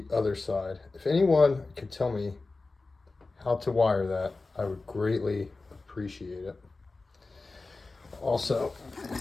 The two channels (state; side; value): quieter; right; 3.6 dB